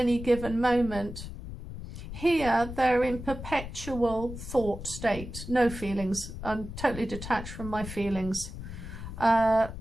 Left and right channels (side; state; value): left; noise; rumble, 10 dB below the sound